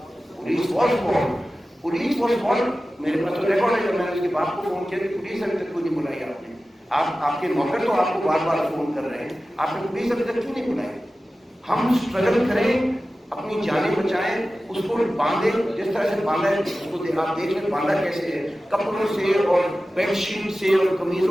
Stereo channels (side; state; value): both; normal; correlation 0.95